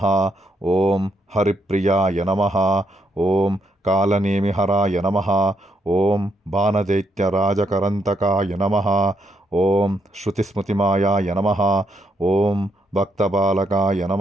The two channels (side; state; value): both; normal; correlation 0.77